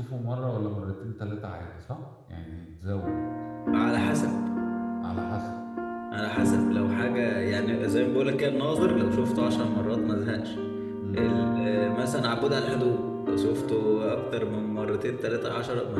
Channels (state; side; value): identical; both; correlation 1.00